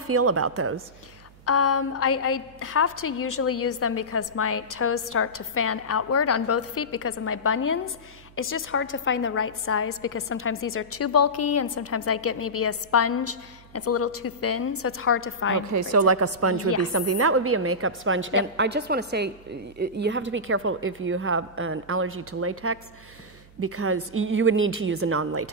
about those? I have to usually use them because my toes start to fan outward on both feet because of my bunions. It's just hard to find the right size because sometimes these are too bulky and sometimes I get maybe a sponge. It's a little too thin, so it's hard to find. Okay, so like a sponge would be something. That would be a makeup sponge. Yep. And I just want to say, you have to be careful if you have an allergy to latex, because you would need to use a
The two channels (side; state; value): right; noise; hum, 24 dB below the sound